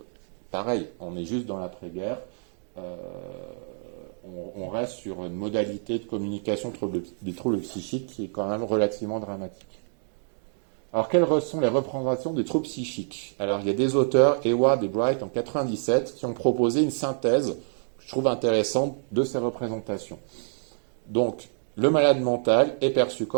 pareil, on est juste dans l'après-guerre. On reste sur une modalité de communication des troubles psychiques qui est quand même relativement dramatique. Alors, quelles sont les représentations des troubles psychiques? Alors, il y a des auteurs, Eward et Bright en 97, qui ont proposé une synthèse, que je trouve intéressante, de ces représentations. Donc, le malade mental est perçu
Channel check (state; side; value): silent; left; digital silence